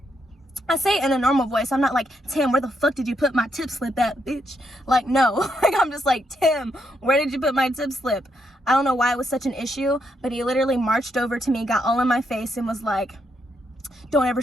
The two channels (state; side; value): normal; both; correlation 0.78